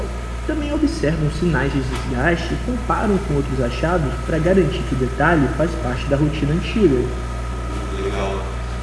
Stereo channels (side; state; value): both; identical; correlation 1.00